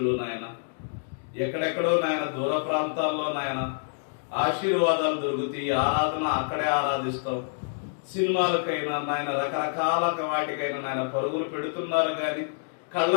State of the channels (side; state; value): right; silent; digital silence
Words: నాయన ఎక్కడెక్కడో నాయన దూర ప్రాంతాల్లో నాయన ఆశీర్వాదాలు దొరుకుతాయి, ఆరాధన అక్కడే ఆరాధిస్తాం, సినిమాలకైనా నాయన రకరకాల వాటికైనా నాయన పరుగులు పెడుతున్నారు కానీ కళ్ళ